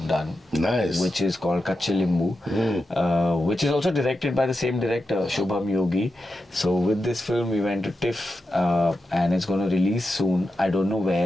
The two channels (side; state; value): both; normal; correlation 0.89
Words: done, Nice. which is called Kache Limbu, which is also directed by the same director, Shubham Yogi. So with this film, we went to TIFF, and it's going to release soon. I don't know